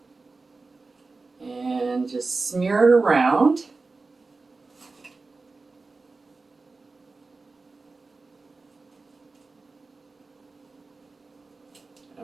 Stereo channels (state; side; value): quieter; left; 3.8 dB